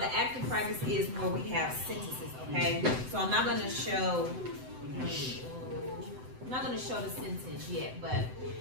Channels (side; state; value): left; late; 7.9 ms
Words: active practice is where we have sentences, okay? So I'm not gonna show the sentence yet, but